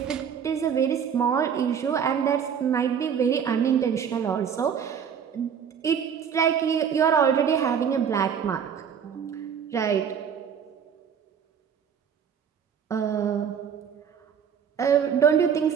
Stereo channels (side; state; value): left; quieter; 7.7 dB